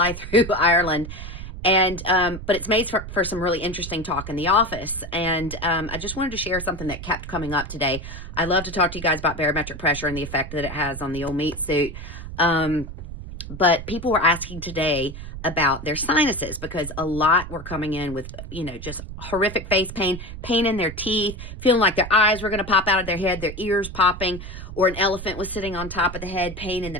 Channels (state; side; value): noise; right; rumble, 10 dB below the sound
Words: through Ireland. And but it's made for some really interesting talk in the office. And I just wanted to share something that kept coming up today. I love to talk to you guys about barometric pressure and the effect that it has on the old meat suit. But people were asking today about their sinuses because a lot were coming in with, just horrific face pain, pain in their teeth, feeling like their eyes were going to pop out of their head, their ears popping, or an elephant was sitting on top of the head, pain in the